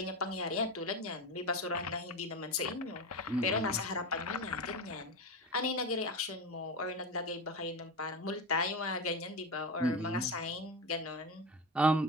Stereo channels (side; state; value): both; normal; correlation 0.21